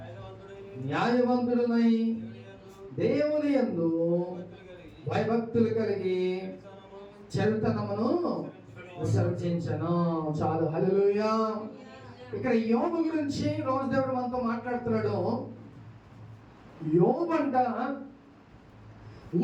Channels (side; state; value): both; identical; correlation 1.00